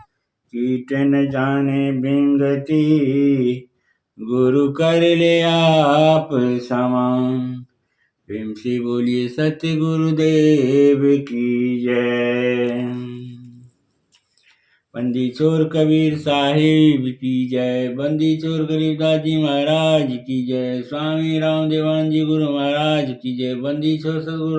कीट न जाने बिंगति, गुरु कर ले आप समान। प्रेम से बोलिए सत्य गुरुदेव की जय। बंदी छोर कबीर साहिब की जय। बंदी छोर गरीबदास जी महाराज की जय। स्वामी रामदेवान जी गुरु महाराज की जय। बंदी छोर सदगुरु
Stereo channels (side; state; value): both; identical; correlation 1.00